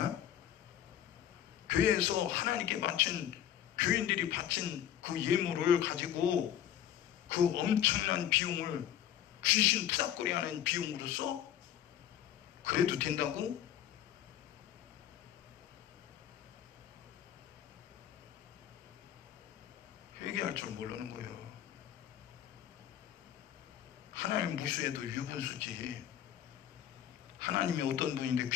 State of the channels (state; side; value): quieter; right; 10.8 dB